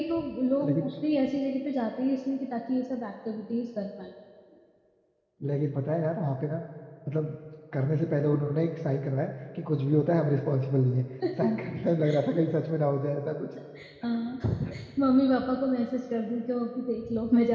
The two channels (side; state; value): both; identical; correlation 1.00